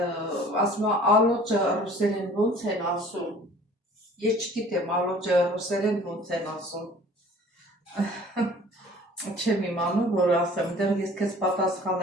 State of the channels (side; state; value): both; normal; correlation 0.49